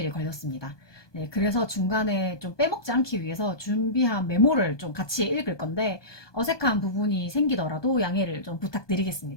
걸렸습니다. 네, 그래서 중간에 좀 빼먹지 않기 위해서 준비한 메모를 좀 같이 읽을 건데 어색한 부분이 생기더라도 양해를 좀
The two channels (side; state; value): right; late; 1.2 ms